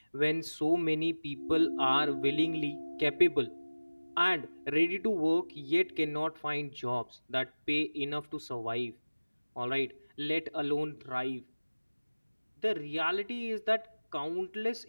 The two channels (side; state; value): both; inverted; correlation -1.00